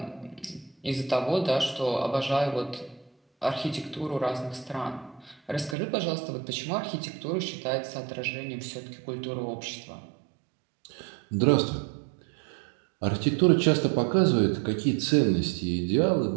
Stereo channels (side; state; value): left; drops out; at 5.8 s